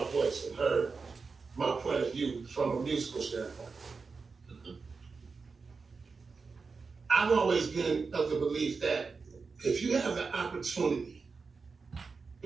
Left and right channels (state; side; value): quieter; left; 4.7 dB